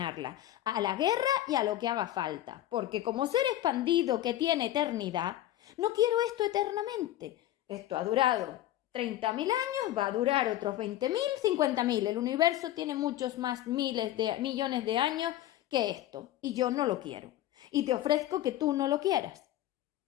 a la guerra y a lo que haga falta. Porque como ser expandido que tiene eternidad, no quiero esto eternamente. Esto ha durado 30.000 años, va a durar otros 20.000, 50.000. El universo tiene muchos más millones de años que esto y yo no lo quiero. Y te ofrezco que tú no lo quieras,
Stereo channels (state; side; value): quieter; right; 13.6 dB